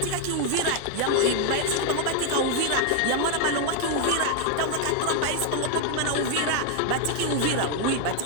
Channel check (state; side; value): different; both; correlation 0.01